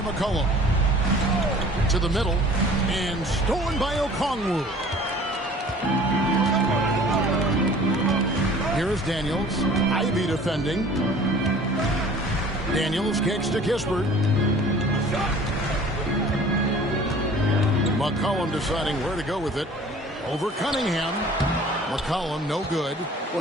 To the middle, and stolen by Okongwu. Here's Daniels. Ivy defending. Daniels kicks to Kispert. McCollum deciding where to go with it. Over Cunningham. McCollum, no good.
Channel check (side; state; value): both; normal; correlation 0.48